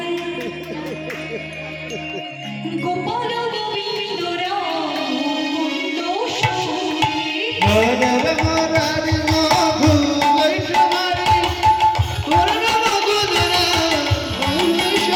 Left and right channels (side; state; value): both; identical; correlation 1.00